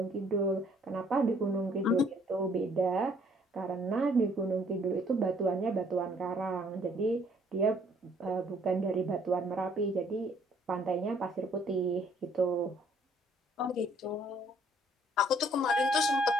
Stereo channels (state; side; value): normal; both; correlation 0.62